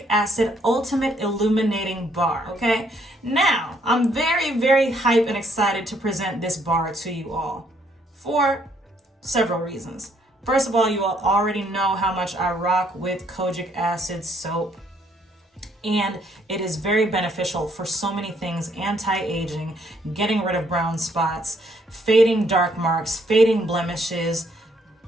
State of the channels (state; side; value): normal; both; correlation 0.69